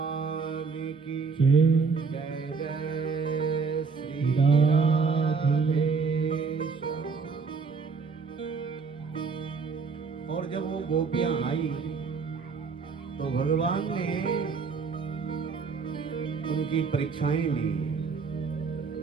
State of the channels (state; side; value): quieter; left; 5.0 dB